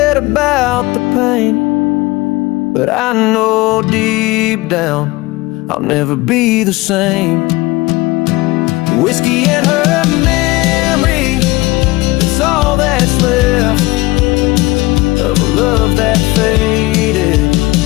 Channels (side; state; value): right; quieter; 21.1 dB